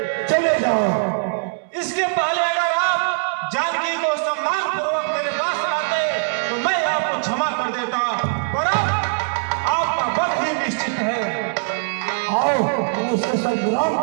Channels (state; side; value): silent; left; digital silence